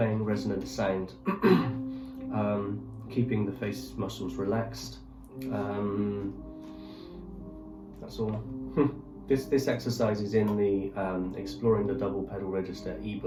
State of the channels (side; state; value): both; identical; correlation 1.00